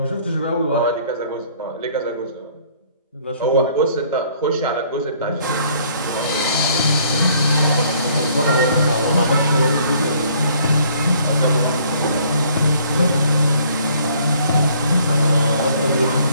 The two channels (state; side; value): inverted; both; correlation -0.60